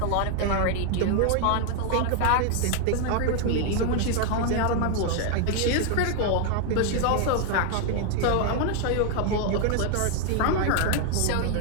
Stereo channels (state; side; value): different; both; correlation 0.01